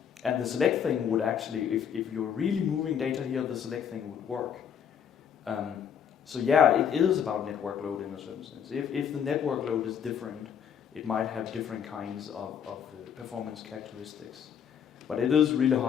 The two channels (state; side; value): quieter; right; 8.1 dB